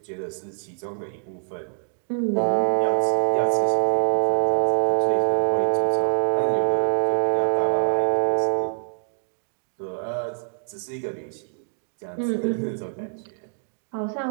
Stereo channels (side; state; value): left; silent; digital silence